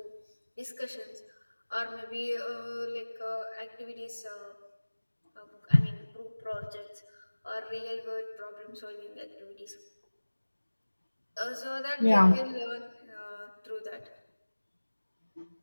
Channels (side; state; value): both; inverted; correlation -1.00